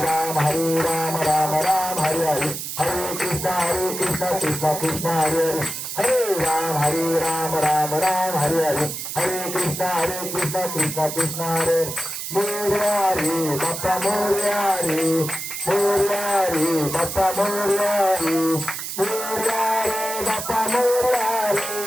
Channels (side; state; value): right; noise; hiss, 6 dB below the sound